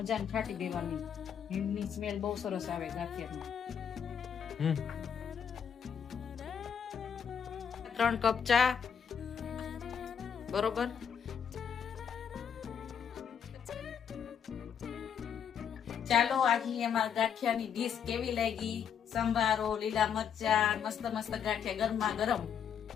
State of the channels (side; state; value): right; quieter; 7.8 dB